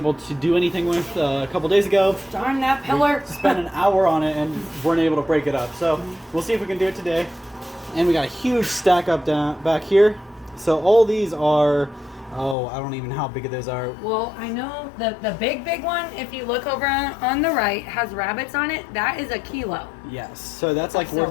to do anything with a couple days ago. Darn that pillar. We spent an hour on it and weren't able to break it up. So we'll see if we can do it today. And we got a huge stack up back here. So all these are, I don't even know how big those are. Well, I know the big one, if you look over on the right, has rabbits on it. That is a kilo. Yes, so that's like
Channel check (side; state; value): right; drops out; at 12.6 s